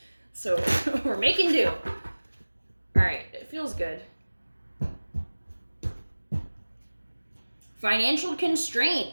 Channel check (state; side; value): inverted; both; correlation -1.00